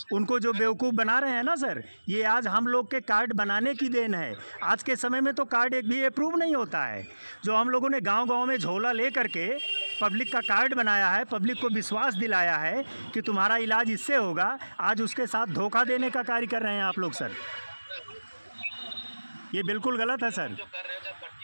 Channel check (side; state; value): both; inverted; correlation -1.00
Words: उनको जो बेवकूफ़ बना रहे हैं ना सर, ये आज हम लोग के कार्ड बनाने की देन है। आज के समय में तो कार्ड एक भी अप्रूव नहीं होता है। जो हम लोगों ने गांव-गांव में झोला ले करके पब्लिक का कार्ड बनाया है, पब्लिक को विश्वास दिलाया है कि तुम्हारा इलाज इससे होगा, आज उसके साथ धोखा देने का कार्य कर रहे हैं आप लोग सर। ये बिल्कुल गलत है सर। जो कर रहे हो, जब